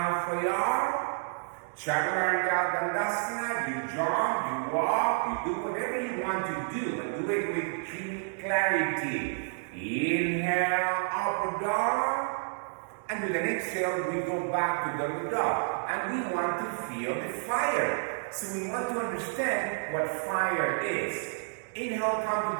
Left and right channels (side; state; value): left; silent; 58 dB below the other